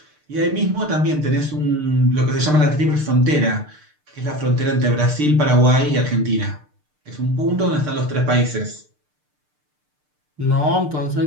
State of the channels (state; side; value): late; left; 6.7 ms